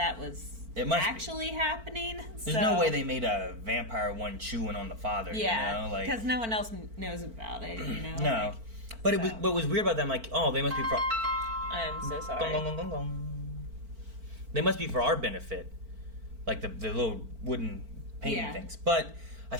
was actually happening. There's no way they made a vampire one chewing on the father, you know? Like, because no one else knows about it, you know? No. Like, but it was what was weird about them, like, oh, they must be for... I'm so sorry. Gong, gong, gong, gong. They must be for our benefit. Like the little wooden painting things. But I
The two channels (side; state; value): left; late; 4.4 ms